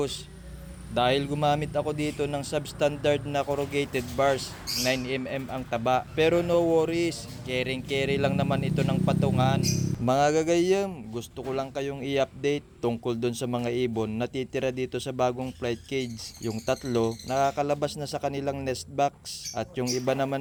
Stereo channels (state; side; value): identical; both; correlation 1.00